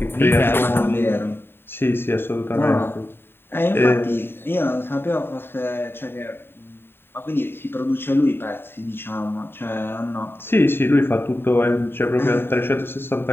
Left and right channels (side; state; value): right; late; 0.11 ms